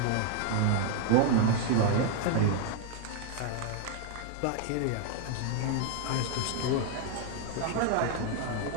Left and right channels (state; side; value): different; both; correlation 0.00